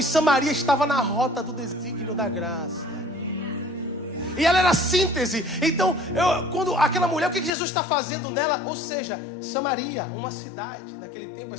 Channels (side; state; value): right; drops out; at 7.5 s